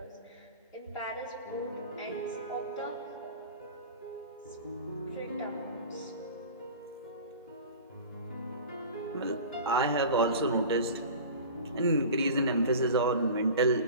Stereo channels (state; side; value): inverted; both; correlation -0.37